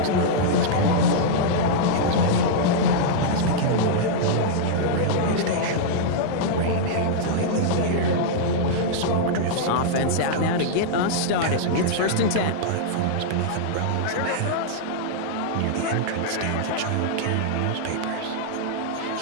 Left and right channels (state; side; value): different; both; correlation -0.02